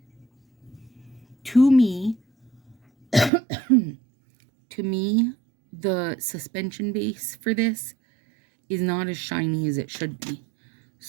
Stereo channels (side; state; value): left; drops out; at 3.3 s